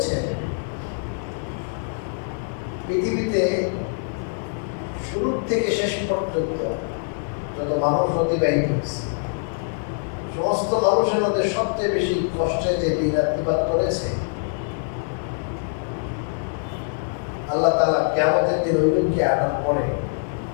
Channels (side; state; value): right; silent; digital silence